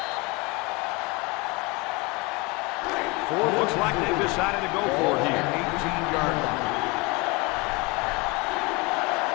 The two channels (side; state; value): right; quieter; 25.6 dB